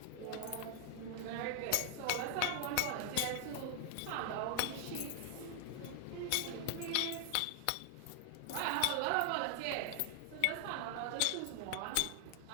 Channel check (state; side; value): different; both; correlation 0.00